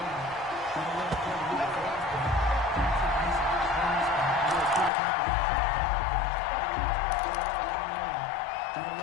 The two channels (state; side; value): drops out; right; at 4.9 s